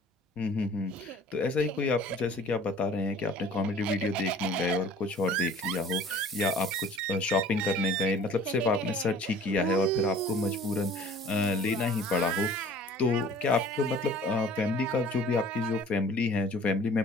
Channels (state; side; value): normal; both; correlation 0.48